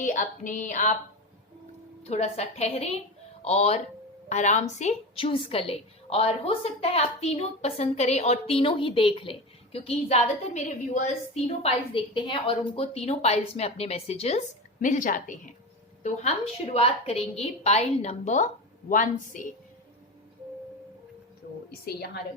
अपने आप थोड़ा सा ठहरे और आराम से चूज कर ले। और हो सकता है आप तीनों पसंद करें और तीनों ही देख लें, क्योंकि ज्यादातर मेरे व्यूअर्स तीनों पाइल्स देखते हैं और उनको तीनों पाइल्स में अपने मैसेजेस मिल जाते हैं। तो हम शुरुआत करेंगे पाइल नंबर 1 से। तो इसे यहां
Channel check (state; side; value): normal; both; correlation 0.24